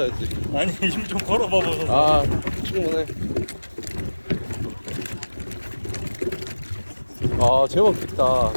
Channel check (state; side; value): inverted; both; correlation -1.00